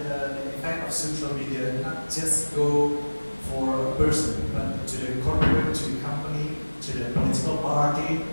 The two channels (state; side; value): inverted; both; correlation -1.00